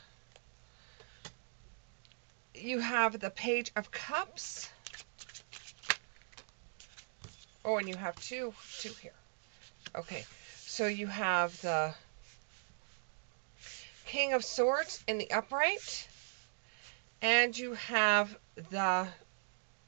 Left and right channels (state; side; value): silent; left; digital silence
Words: Page of Cups. Oh, and you have two here. Okay, so you have the King of Swords in the upright, and you have the